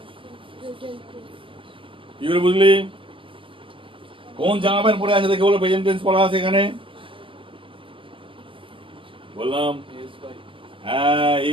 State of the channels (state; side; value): late; left; 0.25 ms